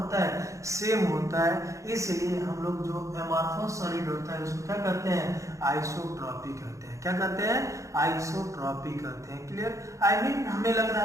है, सेम होता है। इसलिए हम लोग जो एमार्फस सॉलिड होता है उसको क्या कहते हैं, आइसोट्रॉपी कहते हैं। क्या कहते हैं, आइसोट्रॉपी कहते हैं। क्लियर। आई मीन हमें लग रहा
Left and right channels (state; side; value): late; left; 0.15 ms